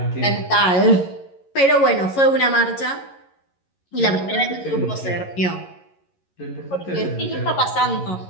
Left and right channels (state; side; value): late; right; 11 ms